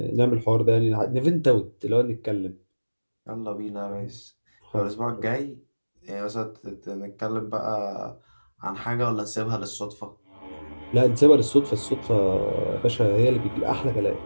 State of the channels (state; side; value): inverted; both; correlation -1.00